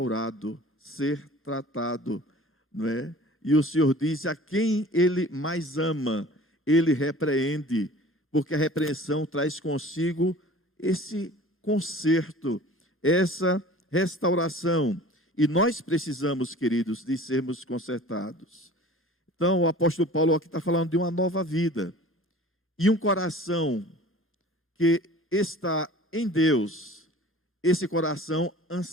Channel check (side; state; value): both; normal; correlation 0.44